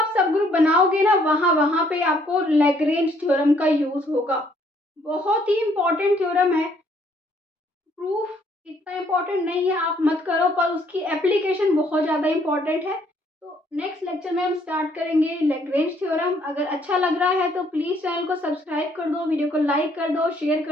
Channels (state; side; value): normal; both; correlation 0.66